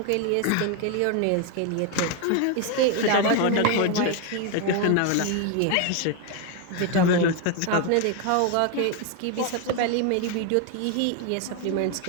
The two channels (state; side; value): different; both; correlation 0.01